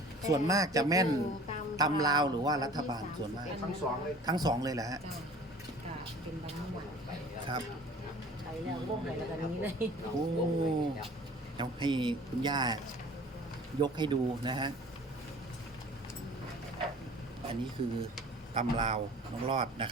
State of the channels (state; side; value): normal; both; correlation 0.46